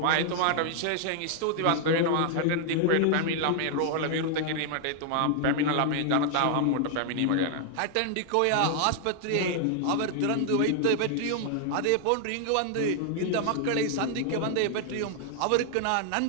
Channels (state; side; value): different; both; correlation 0.00